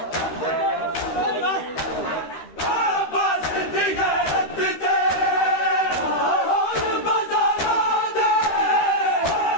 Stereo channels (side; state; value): right; late; 13 ms